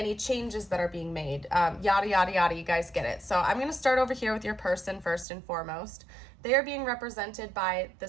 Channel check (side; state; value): left; drops out; at 5.2 s